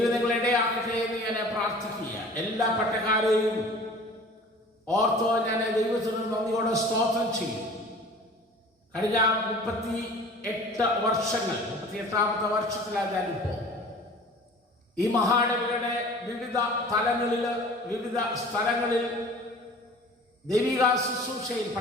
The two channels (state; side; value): normal; both; correlation 0.44